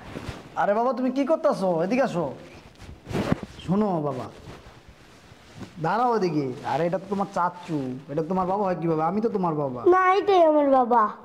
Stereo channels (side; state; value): both; identical; correlation 1.00